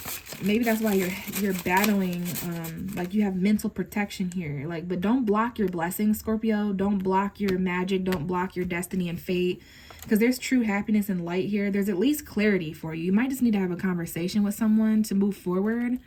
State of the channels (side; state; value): both; identical; correlation 1.00